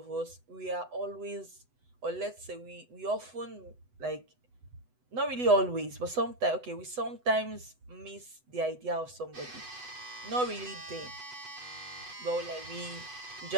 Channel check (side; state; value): left; late; 8.0 ms